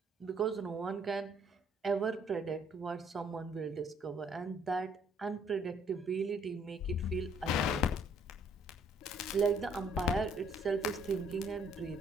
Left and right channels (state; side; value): normal; both; correlation 0.63